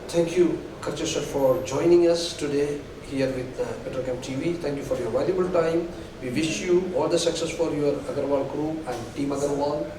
Thank you, KHARCHE sir, for joining us today here with Petrochem TV. Thank you for your valuable time. We wish you all the success for your Agarwal Group and Team Agarwal.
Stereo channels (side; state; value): both; identical; correlation 1.00